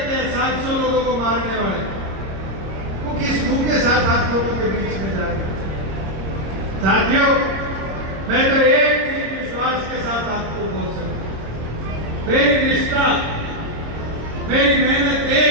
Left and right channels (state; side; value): late; left; 26 ms